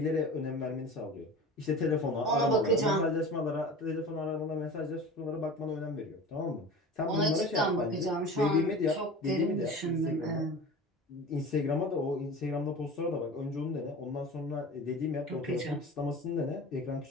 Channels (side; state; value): both; normal; correlation 0.35